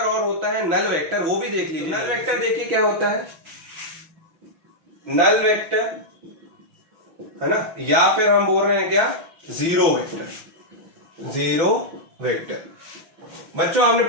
होता है नल वेक्टर, वो भी देख लीजिए। नल वेक्टर देखिए क्या होता है, नल वेक्टर, है ना, या फिर हम बोल रहे हैं क्या जीरो वेक्टर। जीरो वेक्टर बच्चों आपने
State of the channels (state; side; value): late; left; 6.0 ms